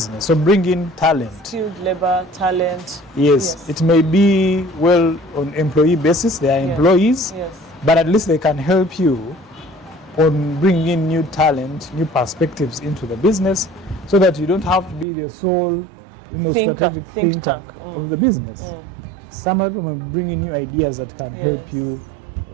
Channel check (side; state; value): left; drops out; at 15.1 s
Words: So bring in talent. Skilled labor, talent. Yes, it may be on employee basis, they are employees, Yes. but at least they can help you on bringing in new talent, new perspectives into the business, so that you don't have to be the sole, strategic thinker of the business. Some of them will bring in new ideas that can help you,